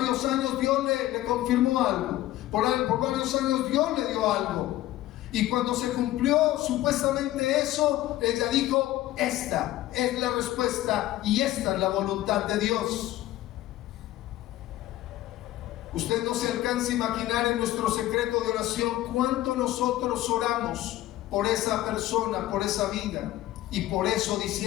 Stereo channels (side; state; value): right; quieter; 15.2 dB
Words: años Dios le confirmó algo. Por varios años Dios le dio algo. Y cuando se cumplió supuestamente eso, ella dijo: esta es la respuesta y esta es la voluntad de Dios. Usted no se alcanza a imaginar en nuestro secreto de oración cuánto nosotros oramos por esa persona, por esa vida. Y por eso